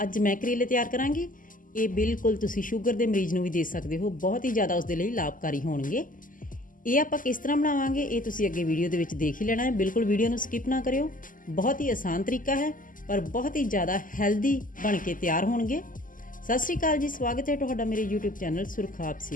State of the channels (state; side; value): late; right; 0.39 ms